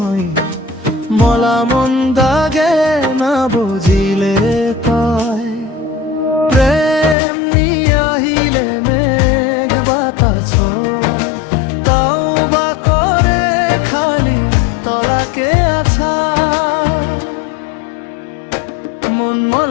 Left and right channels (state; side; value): drops out; right; at 7.2 s